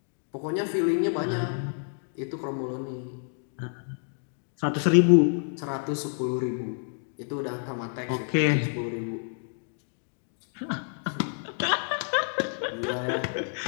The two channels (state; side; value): silent; right; 59 dB below the other